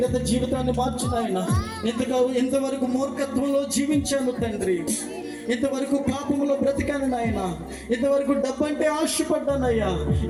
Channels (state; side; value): identical; both; correlation 1.00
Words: జీవితాన్ని మార్చిన ఆయన. ఎంతవరకు మూర్ఖత్వంలో జీవించాను తండ్రి, ఇంతవరకు పాపములో బ్రతికాను నాయన, ఇంతవరకు డబ్బు అంటే ఆశపడ్డానయ్యా,